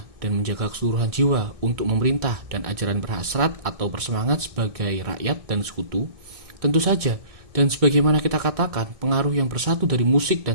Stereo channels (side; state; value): left; late; 1.6 ms